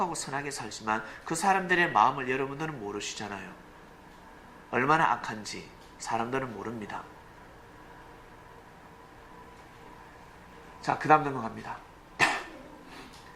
선하게 살지만 그 사람들의 마음을 여러분들은 모르시잖아요. 얼마나 악한지 사람들은 모릅니다. 자, 그 다음 넘어갑니다.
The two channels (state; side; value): identical; both; correlation 1.00